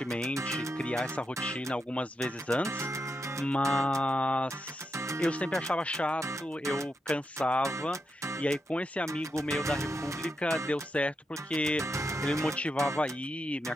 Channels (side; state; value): both; normal; correlation 0.84